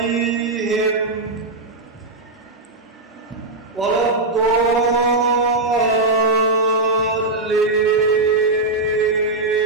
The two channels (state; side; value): quieter; left; 3.1 dB